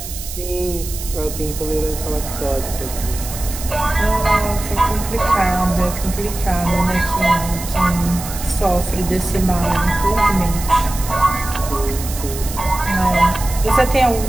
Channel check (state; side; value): noise; right; hiss, 10 dB below the sound